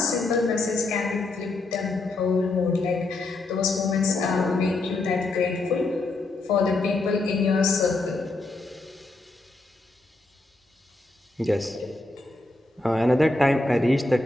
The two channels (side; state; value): right; quieter; 3.0 dB